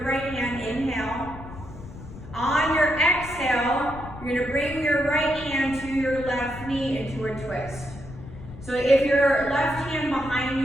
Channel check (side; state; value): left; noise; rumble, 14 dB below the sound